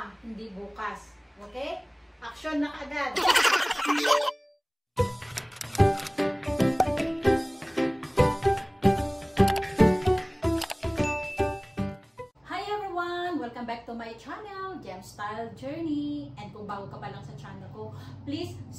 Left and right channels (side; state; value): both; identical; correlation 1.00